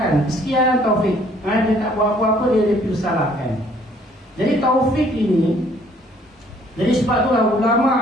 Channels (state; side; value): normal; both; correlation 0.61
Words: Sekian taufik. Dia tak buat apa-apa, dia dipersalahkan. Jadi taufik ini, jadi sebab itulah